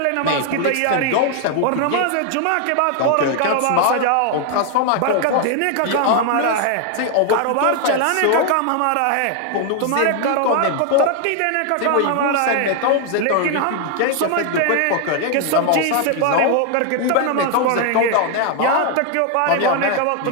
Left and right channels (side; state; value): both; different; correlation 0.00